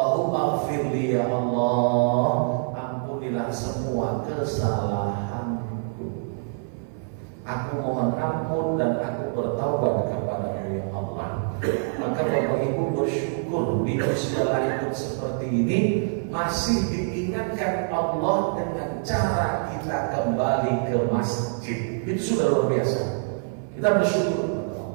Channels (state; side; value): silent; left; 60 dB below the other